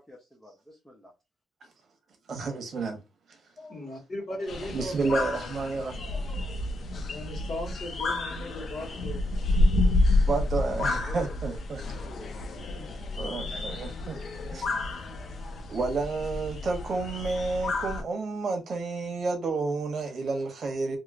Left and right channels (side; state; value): both; normal; correlation 0.80